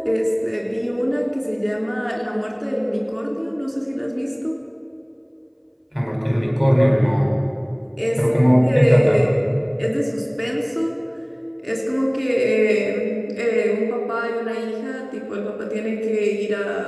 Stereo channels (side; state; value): both; identical; correlation 1.00